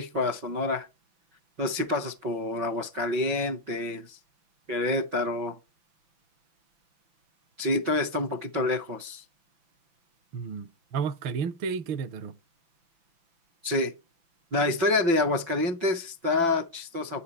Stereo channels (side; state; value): left; late; 6.0 ms